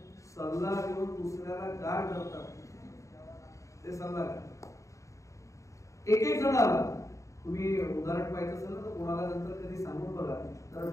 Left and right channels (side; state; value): right; late; 0.15 ms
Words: सल्ला देऊन दुसऱ्याला गार करतात ते सल्लागार. एक जण आला, तुम्ही उदाहरण पाहिजे असेल तर कोणाला नंतर कधी सांगून बघा, तर